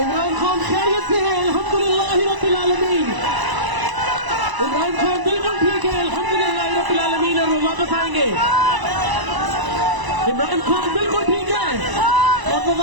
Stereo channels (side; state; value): left; late; 1.0 ms